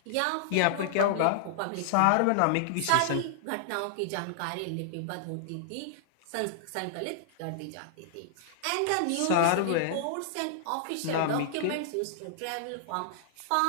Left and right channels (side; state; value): both; different; correlation -0.01